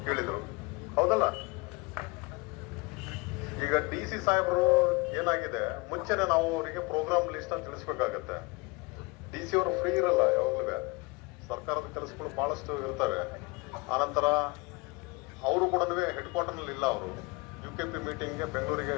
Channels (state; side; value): quieter; right; 26.7 dB